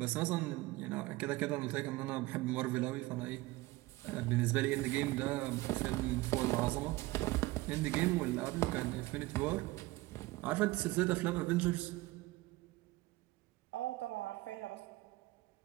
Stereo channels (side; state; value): left; quieter; 19.7 dB